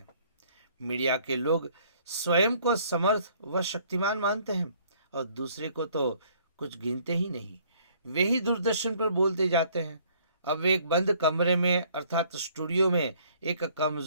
मीडिया के लोग स्वयं को समर्थ व शक्तिमान मानते हैं और दूसरे को तो कुछ गिनते ही नहीं। वे ही दूरदर्शन पर बोलते जाते हैं। अब वे एक बंद कमरे में अर्थात स्टूडियो में एक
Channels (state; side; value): inverted; both; correlation -0.61